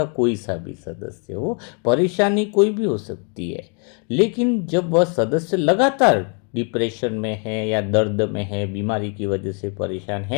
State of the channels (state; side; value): quieter; right; 39.4 dB